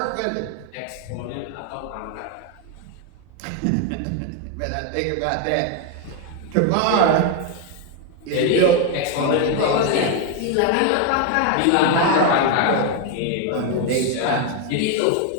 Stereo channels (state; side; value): different; both; correlation 0.01